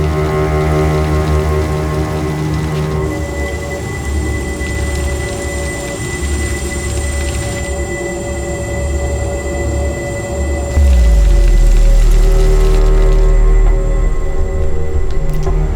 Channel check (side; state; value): both; identical; correlation 1.00